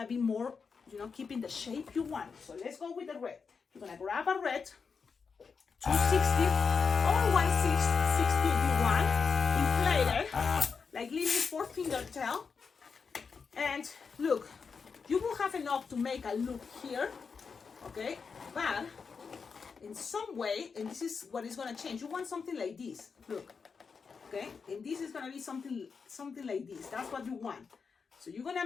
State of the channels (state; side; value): quieter; right; 5.5 dB